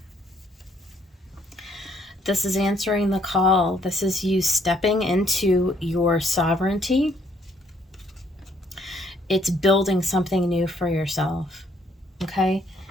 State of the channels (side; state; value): both; normal; correlation 0.67